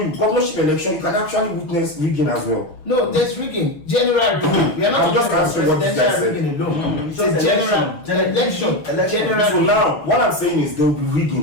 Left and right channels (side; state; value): right; late; 6.3 ms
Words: governorship election, you can actually witness rigging as well. No, there's rigging. General rigging. We are not I'm just talking about answering what this guy presidential said. rigging alone. It's just a general election. General So rigging. now, what I'm saying is there will be